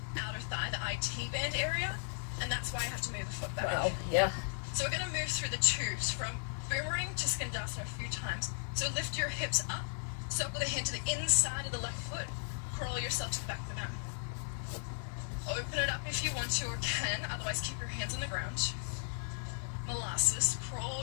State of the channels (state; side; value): silent; right; digital silence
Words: outer thigh, the IT band area, and that's why I have to move the foot back. Wow. Yeah. So we're going to move through the twos from boomerang to Skandasana a few times. So lift your hips up, circle the hand to the inside of the left foot, crawl yourself to the back of the mat. Open it up if you want to or can, otherwise keep your hands on the ground. Molasses,